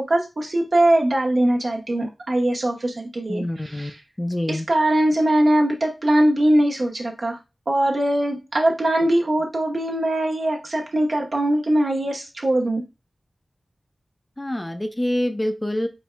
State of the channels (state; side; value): normal; both; correlation 0.96